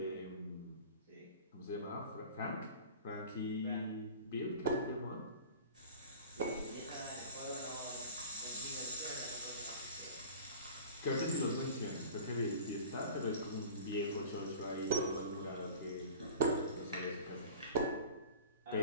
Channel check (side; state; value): both; inverted; correlation -0.40